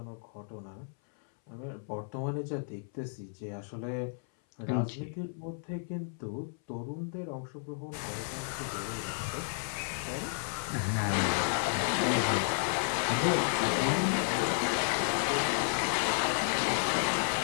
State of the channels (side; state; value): right; silent; 56 dB below the other